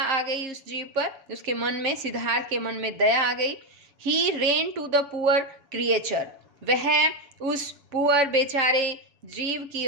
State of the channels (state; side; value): late; left; 7.5 ms